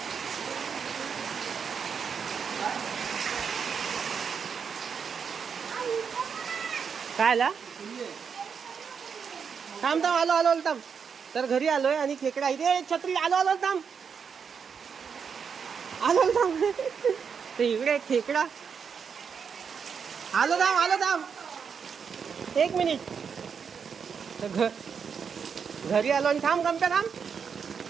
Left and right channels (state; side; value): quieter; left; 6.5 dB